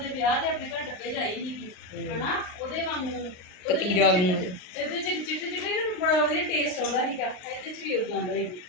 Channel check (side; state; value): right; late; 38 ms